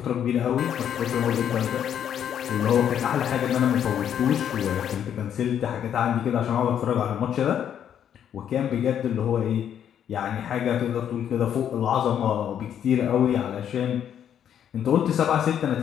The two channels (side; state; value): right; quieter; 9.3 dB